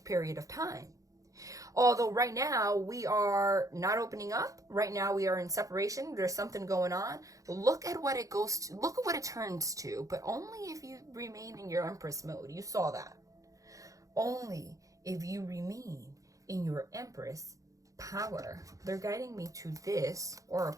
period of time. Although right now we are not opening up. Right now we are in separation. There's something going on. Look at what it goes to. Look at what it turns to. But only if you remain in your Empress mode. You saw that. Only if you remain in your Empress power. They're guiding me to this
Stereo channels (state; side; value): late; left; 0.16 ms